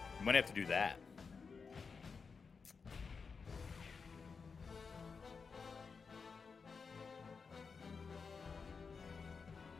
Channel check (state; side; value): quieter; right; 5.2 dB